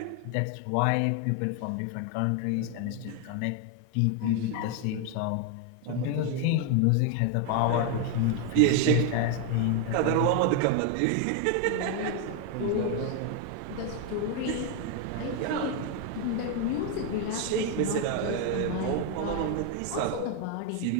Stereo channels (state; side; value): different; both; correlation 0.01